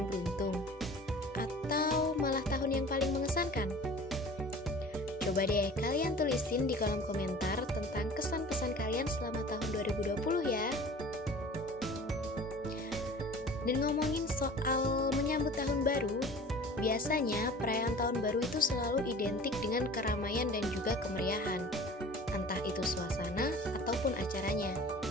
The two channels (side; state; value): both; normal; correlation 0.43